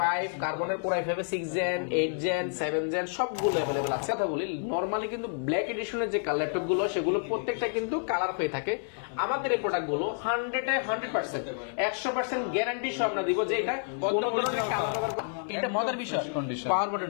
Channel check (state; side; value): silent; right; 58 dB below the other